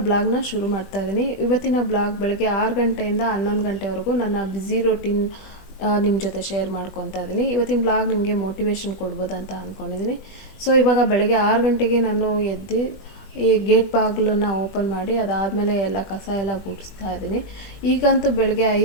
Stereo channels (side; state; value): right; late; 20 ms